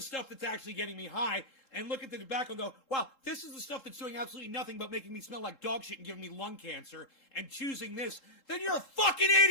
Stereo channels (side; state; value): right; late; 3.7 ms